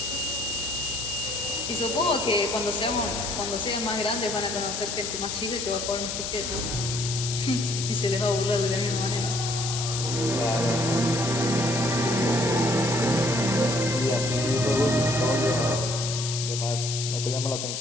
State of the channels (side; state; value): left; noise; hiss, 4 dB below the sound